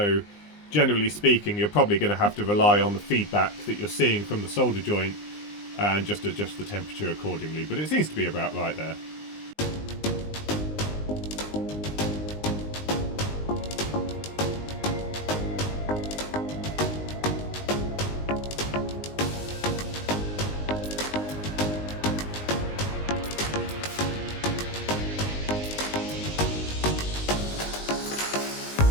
generally speaking you're probably going to have to rely on the feedback that you're seeing from the solder joint and just adjust the temperature accordingly, but it seems to be about right there.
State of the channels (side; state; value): right; late; 19 ms